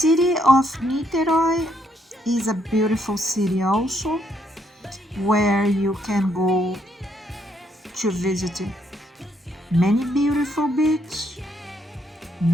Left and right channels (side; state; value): both; normal; correlation 0.73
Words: of Niterói is a beautiful city also, where you can go to visit many beautiful beaches.